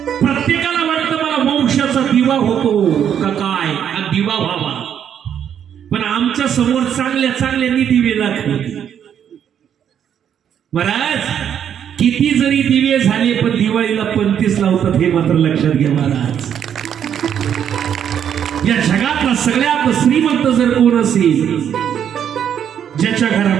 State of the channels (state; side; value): quieter; left; 9.0 dB